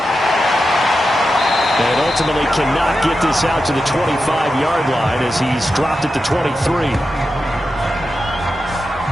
And ultimately cannot get this out to the 25-yard line as he's dropped at the 23.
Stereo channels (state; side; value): normal; both; correlation 0.90